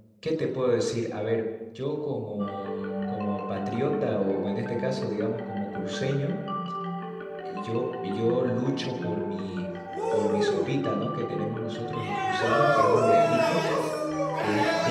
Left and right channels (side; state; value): both; identical; correlation 1.00